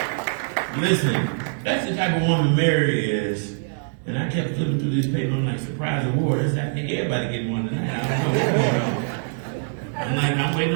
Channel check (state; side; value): silent; left; digital silence